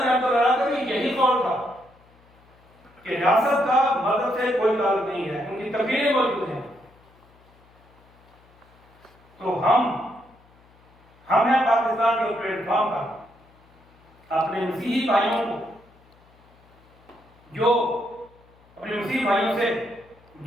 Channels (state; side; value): noise; left; hum, 30 dB below the sound